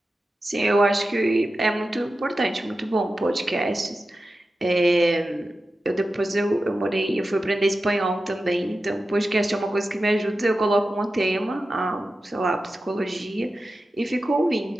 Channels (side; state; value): both; normal; correlation 0.93